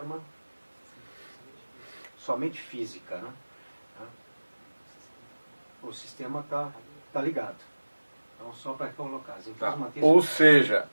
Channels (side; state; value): both; inverted; correlation -1.00